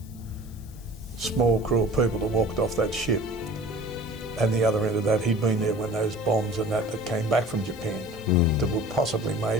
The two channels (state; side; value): noise; left; hiss, 24 dB below the sound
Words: small crew of people that walked off that ship. And the other end of that, he'd been there when those bombs and that came back from Japan that were possibly